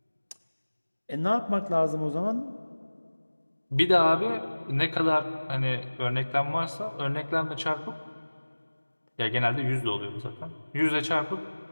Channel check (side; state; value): both; inverted; correlation -1.00